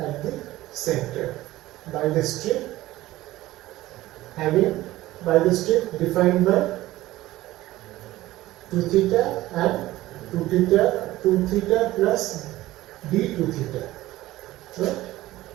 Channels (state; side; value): quieter; left; 16.6 dB